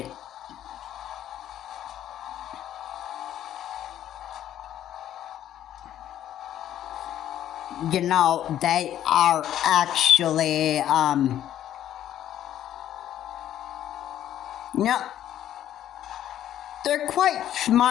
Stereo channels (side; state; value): right; quieter; 11.5 dB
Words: You know, they are actually, you know, they're quite